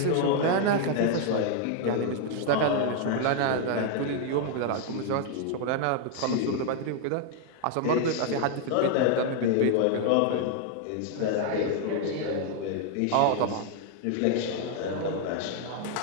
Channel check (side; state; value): both; different; correlation 0.00